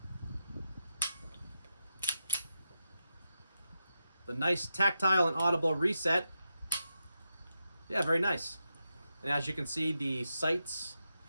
The nice tactile and audible reset. Yeah, very nice. And as you can see, the sights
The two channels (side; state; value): both; inverted; correlation -0.86